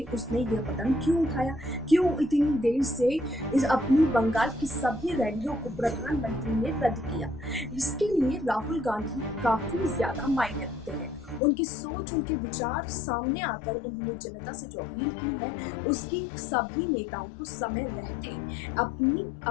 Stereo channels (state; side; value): drops out; right; at 11.4 s